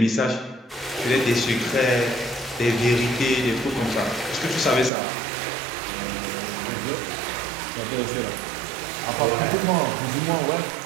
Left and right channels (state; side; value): drops out; left; at 4.9 s